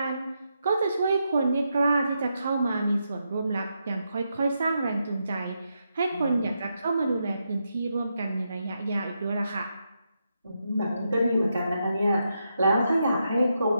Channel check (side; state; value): both; inverted; correlation -0.83